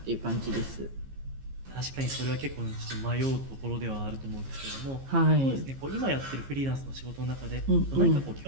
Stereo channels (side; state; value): left; late; 15 ms